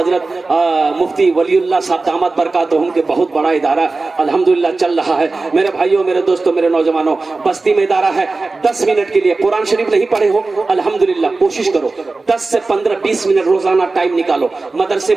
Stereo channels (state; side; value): quieter; left; 3.6 dB